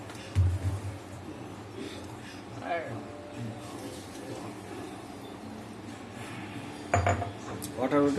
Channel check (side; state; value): both; identical; correlation 1.00